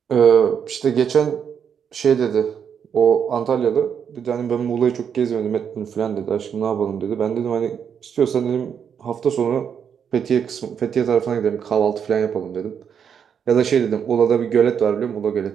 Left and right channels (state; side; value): quieter; left; 7.6 dB